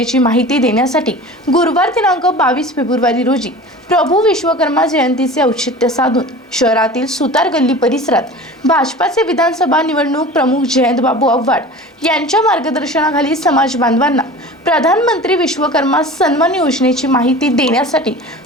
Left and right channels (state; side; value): normal; both; correlation 0.37